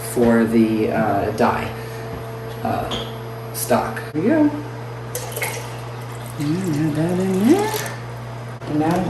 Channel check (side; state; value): both; identical; correlation 1.00